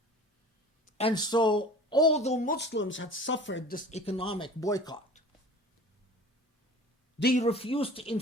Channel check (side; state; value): both; normal; correlation 0.42